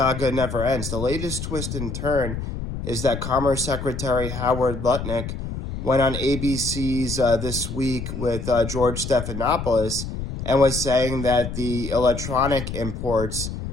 never ends. The latest twist and turn is that Commerce Secretary Howard Lutnick went on ABC's This Week with George Stephanopoulos and was saying that the electronic imports,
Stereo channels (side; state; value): left; noise; rumble, 6 dB below the sound